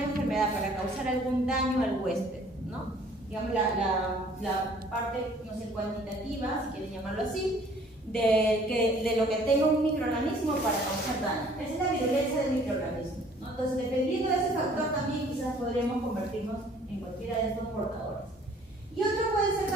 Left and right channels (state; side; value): normal; both; correlation 0.56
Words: enfermedad, para causar algún daño al huésped, ¿no? Digamos, la parte, no sé, cuantitativa, si quieren llamarlo así, de lo que tenga un microorganismo para causar daño. Esa es la virulencia del microorganismo, ¿no? Entonces, dependiendo de ese factor, también quizás podríamos convertirnos en cualquiera de estos portadores. Y otro puede ser